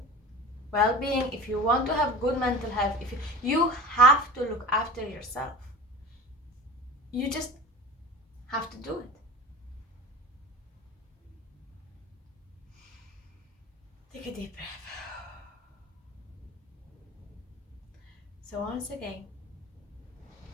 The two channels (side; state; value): both; normal; correlation 0.36